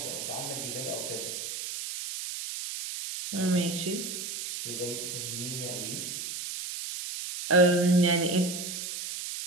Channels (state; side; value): noise; right; hiss, 6 dB below the sound